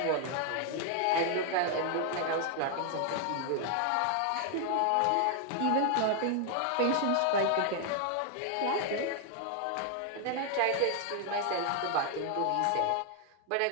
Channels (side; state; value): both; different; correlation 0.00